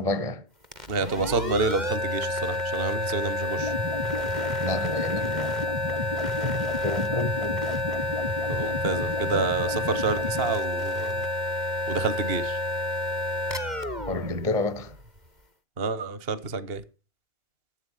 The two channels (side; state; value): left; late; 2.1 ms